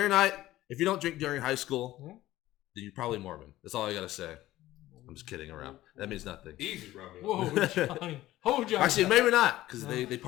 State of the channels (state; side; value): quieter; right; 15.6 dB